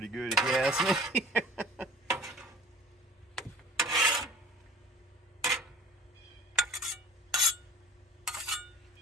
good if you ask me.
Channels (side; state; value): both; normal; correlation 0.44